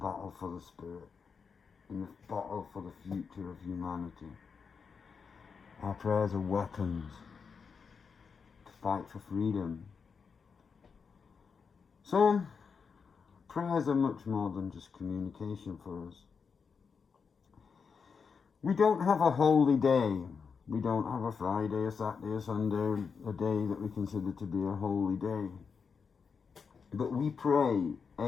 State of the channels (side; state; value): right; quieter; 5.7 dB